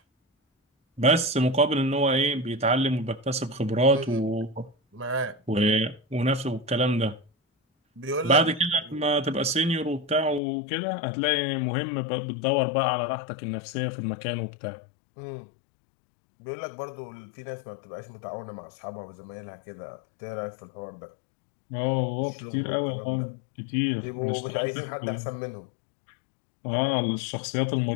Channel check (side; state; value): right; drops out; at 10.4 s